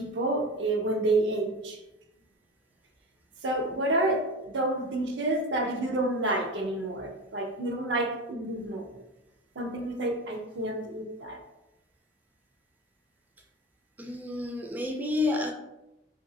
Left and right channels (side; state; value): both; normal; correlation 0.28